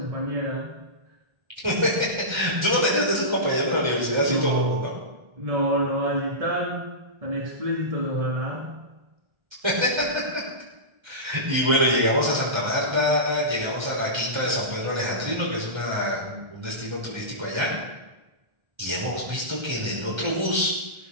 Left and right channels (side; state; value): left; late; 1.3 ms